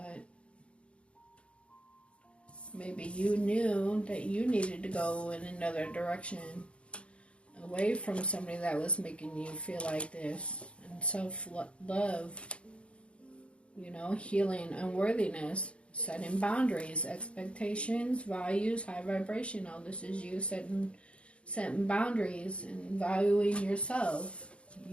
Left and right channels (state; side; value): late; right; 0.059 ms